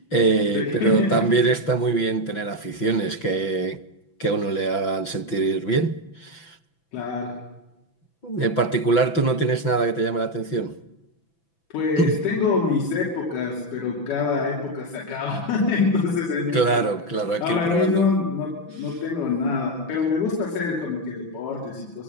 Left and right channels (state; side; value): late; right; 6.0 ms